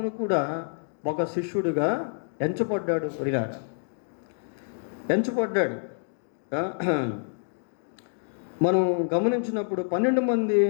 కూడా ఒక శిష్యుడిగా ఎంచబడ్డాడు ప్రియులారా. మనం గమనించినప్పుడు 12 మంది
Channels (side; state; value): right; silent; digital silence